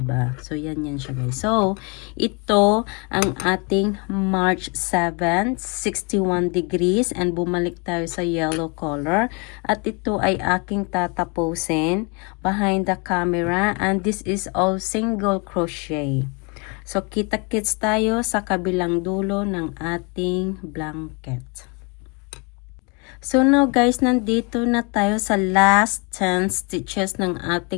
So yan siya guys. So ito ang ating March 7, 61 degrees and bumalik tayo sa yellow color at ito ay aking tatapusin behind the camera and this is all single crochet. So kita-kits tayo sa kabilang dulo ng ating blanket. So now guys, nandito na tayo sa last 10 stitches ng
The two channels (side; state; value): right; quieter; 32.1 dB